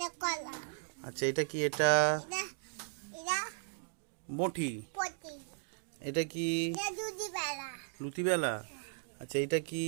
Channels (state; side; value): silent; left; digital silence